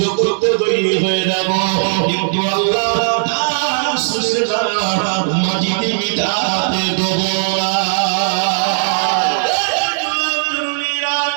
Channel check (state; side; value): silent; left; digital silence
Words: করতে তৈরি হয়ে যাব, কিন্তু আল্লাহ তার রাসূলের নাম মাটিতে মিটাতে দেব না।